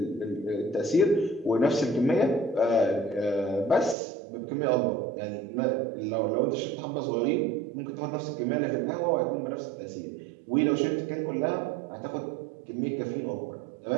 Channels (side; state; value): left; drops out; at 4.0 s